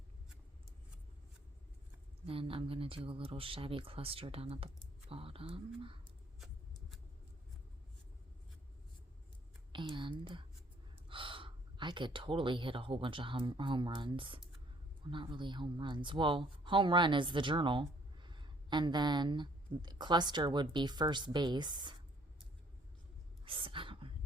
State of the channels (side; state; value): both; normal; correlation 0.61